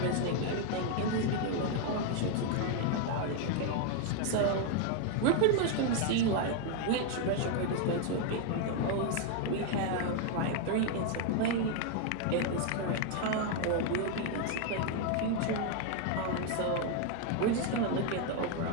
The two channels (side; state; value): both; different; correlation 0.01